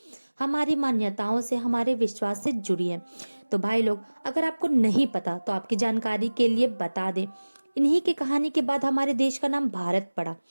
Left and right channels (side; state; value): both; inverted; correlation -1.00